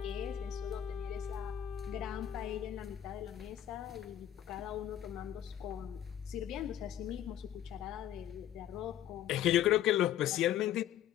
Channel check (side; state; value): right; quieter; 11.2 dB